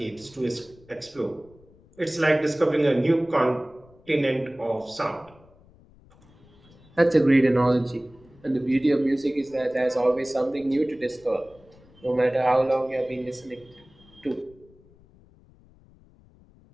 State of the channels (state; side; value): noise; left; rumble, 27 dB below the sound